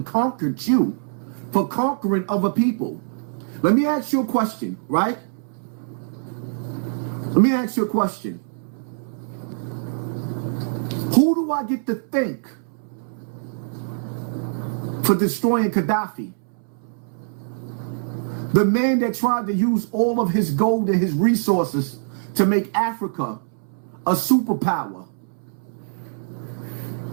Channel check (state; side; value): silent; left; 63 dB below the other